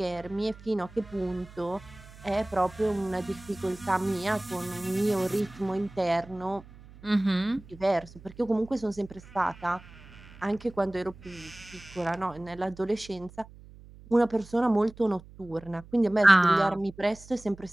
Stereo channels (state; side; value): noise; right; hum, 20 dB below the sound